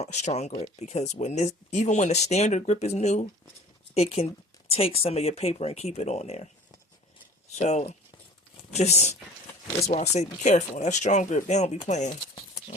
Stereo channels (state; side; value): normal; both; correlation 0.45